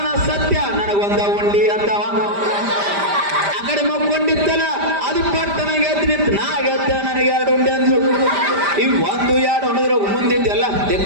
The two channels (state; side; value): late; left; 5.0 ms